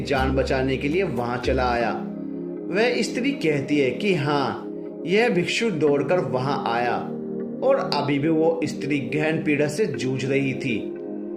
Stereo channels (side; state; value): both; identical; correlation 1.00